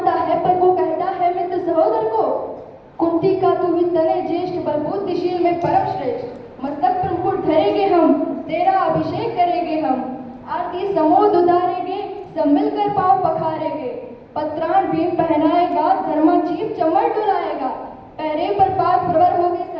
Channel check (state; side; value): identical; both; correlation 1.00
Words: है पर वो कहता है मित्र सहोदर को। कुंती का तू ही तने ज्येष्ठ पर बुद्धिशील में परम श्रेष्ठ। मस्तक पर मुकुट धरेंगे हम तेरा अभिषेक करेंगे हम। आरती समोद उतारेंगे सब मिलकर पाँव पखारेंगे। पत्राण भीम पहनाएगा धर्मा जीव चमर डुलाएगा। पैरे पर पाद प्रवर होगे